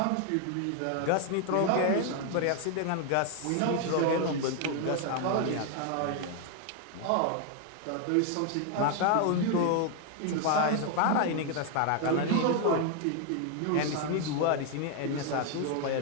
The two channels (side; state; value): both; different; correlation 0.01